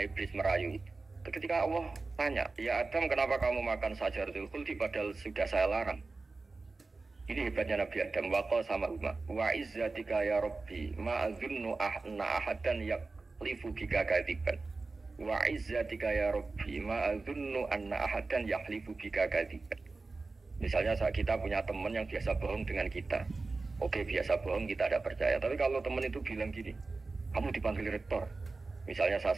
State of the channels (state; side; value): quieter; left; 3.7 dB